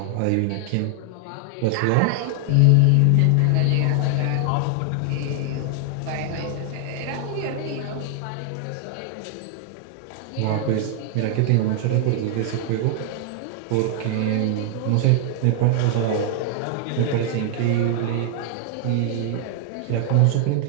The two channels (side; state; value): both; different; correlation 0.00